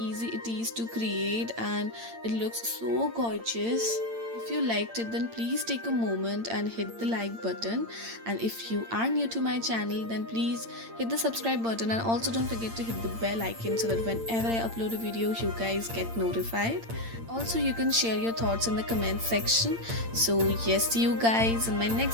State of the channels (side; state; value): left; late; 8.8 ms